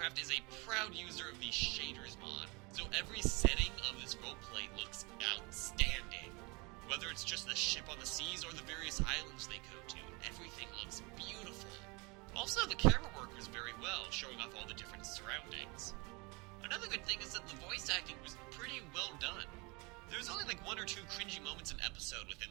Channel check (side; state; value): left; quieter; 27.9 dB